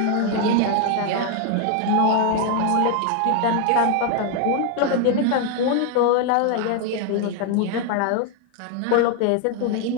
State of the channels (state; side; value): different; both; correlation 0.00